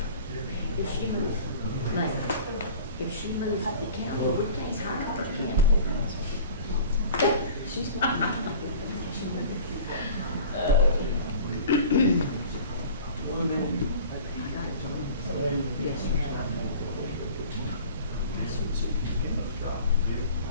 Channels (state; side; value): inverted; both; correlation -0.44